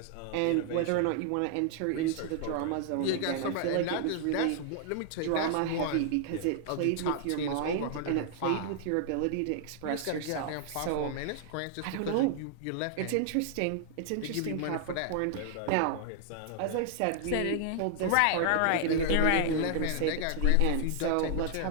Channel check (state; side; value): different; both; correlation 0.00